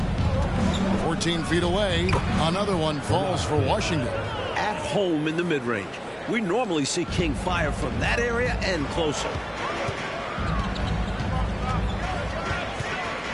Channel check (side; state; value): both; identical; correlation 1.00